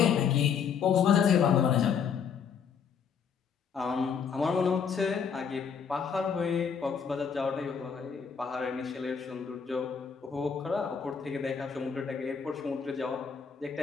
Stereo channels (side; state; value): right; quieter; 6.7 dB